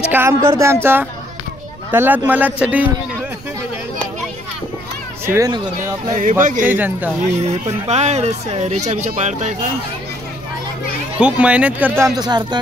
काम करतोय आमचा तलात मलात साठी शिवेन करतोय आपला जनता. हे पण पाय रेषा बिचा पाडताय का. खूप मेहनत करतो आमचा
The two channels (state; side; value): noise; right; rumble, 19 dB below the sound